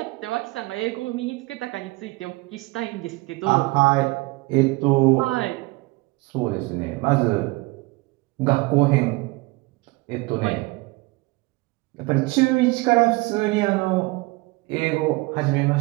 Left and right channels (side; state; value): left; quieter; 23.6 dB